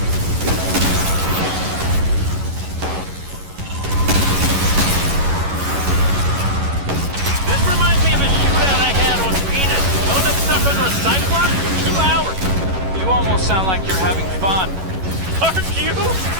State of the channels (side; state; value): left; late; 11 ms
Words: This reminds me of a shootout I had on Venus. Wound up stuck under a cyclops for 2 hours. You almost sound like you're having fun. Aren't you?